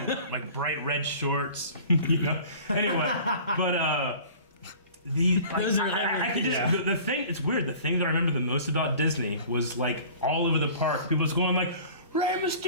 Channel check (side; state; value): both; inverted; correlation -0.45